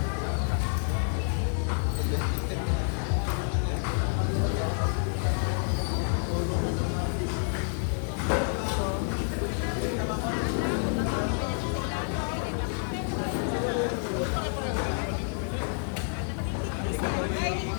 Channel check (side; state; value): right; silent; 59 dB below the other